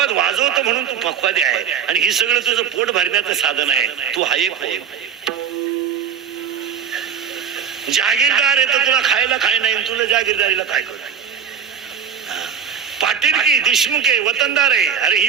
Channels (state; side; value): quieter; left; 7.5 dB